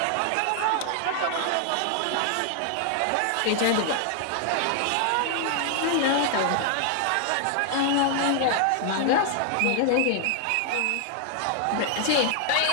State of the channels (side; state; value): both; different; correlation 0.00